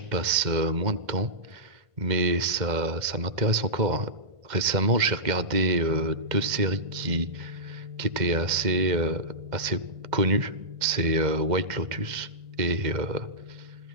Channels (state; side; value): late; left; 2.0 ms